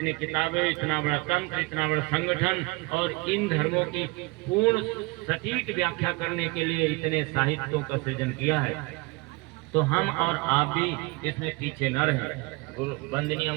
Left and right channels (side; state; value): left; quieter; 25.2 dB